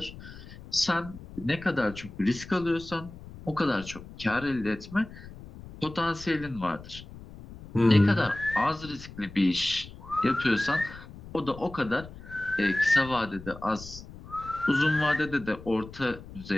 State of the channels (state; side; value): noise; left; rumble, 16 dB below the sound